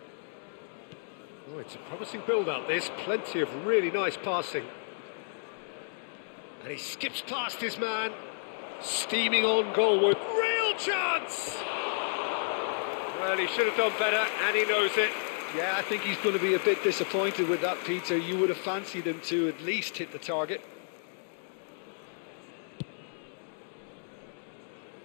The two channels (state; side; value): silent; right; digital silence